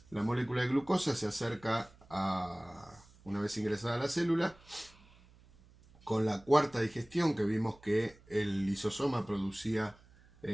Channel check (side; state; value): right; noise; hum, 26 dB below the sound